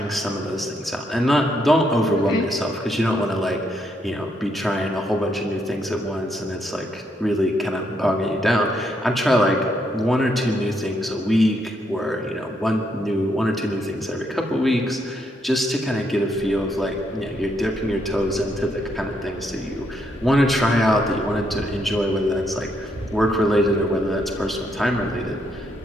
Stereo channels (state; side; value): normal; both; correlation 0.76